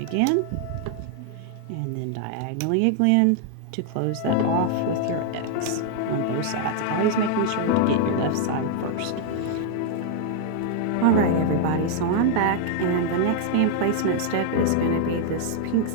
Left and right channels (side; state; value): both; different; correlation 0.00